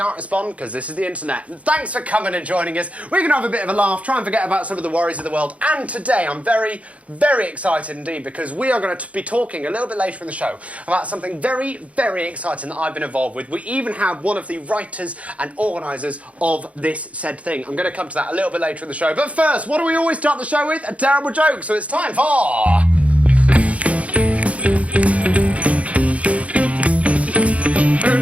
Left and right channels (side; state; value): left; late; 0.065 ms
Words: respond because this is the internet. Thanks for coming and joining us. We're going to have a bit of a laugh, try and forget about some of the worries of the world. And today I'm very, very excited indeed because we are going to be talking a little bit later in the show about something very, very exciting that I've been involved with. We even have one of the writers and organisers of this said thing. I'm going to come to that a little bit later in the show. But first, what do we always start the show with? A terrible joke. So it's time for...